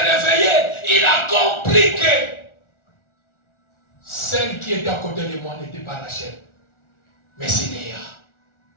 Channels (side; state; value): right; late; 1.4 ms